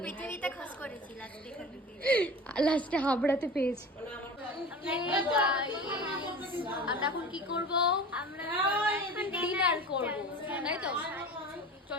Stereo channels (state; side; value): normal; both; correlation 0.36